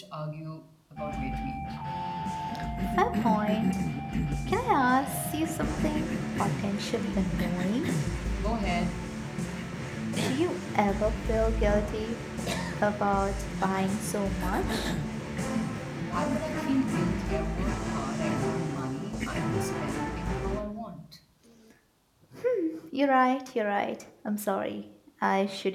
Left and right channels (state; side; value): identical; both; correlation 1.00